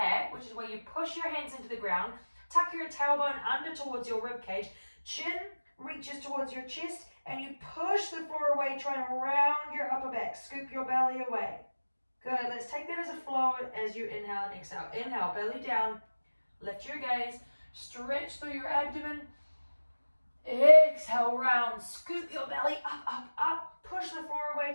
which is where you push your hands into the ground, tuck your tailbone under towards your rib cage, chin reaches towards your chest, and you push the floor away, trying to round your upper back, scoop your belly away. Good, let's take that as a flow as you inhale and exhale. Inhale, belly down, lift your gaze, stretch through your abdomen. Exhale, round, scoop your belly up, up, up, push the floor away,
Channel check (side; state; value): both; inverted; correlation -1.00